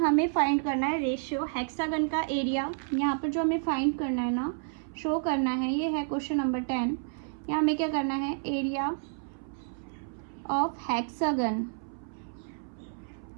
फाइंड करना है रेशियो, हेक्सागन का एरिया यहाँ पर जो हमें फाइंड करना है ना, शो करना है, ये है क्वेश्चन नंबर 10। यहाँ हमें क्या करना है, एरिया ऑफ हेक्सागन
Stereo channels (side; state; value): left; silent; 58 dB below the other